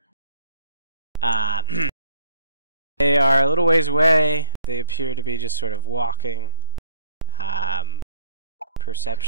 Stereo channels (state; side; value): inverted; both; correlation -0.75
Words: They are a little ways away. They appear to be just sort of walking.